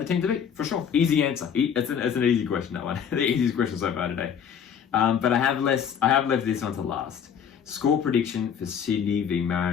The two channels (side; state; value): right; quieter; 7.9 dB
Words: team to beat for sure. Easy answer. It's an easy question, that one. The easiest question so far today. But I have left this one to last. Score prediction for Sydney v